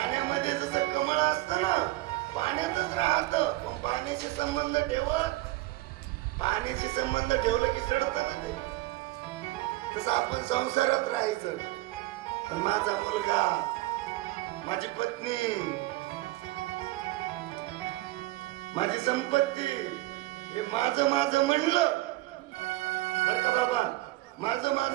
जसं कमळ असतं ना, पाण्यातच राहत, पण पाण्याचे संबंध ठेवत, पाण्याचे संबंध ठेवलं की सडत ना ते. तसं आपण संसारात राहायचं. पण माझा मुलगा, माझी पत्नी, माझी संपत्ती हे माझं माझं म्हणलं बर का बाबा, माझं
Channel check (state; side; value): quieter; left; 18.7 dB